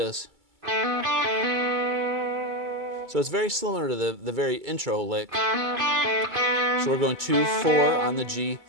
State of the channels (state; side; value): late; left; 2.3 ms